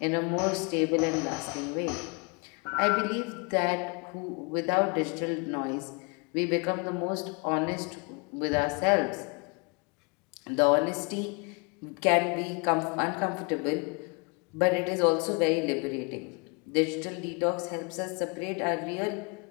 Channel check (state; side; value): quieter; right; 33.1 dB